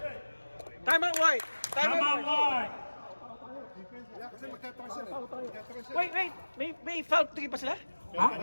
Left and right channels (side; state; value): both; inverted; correlation -1.00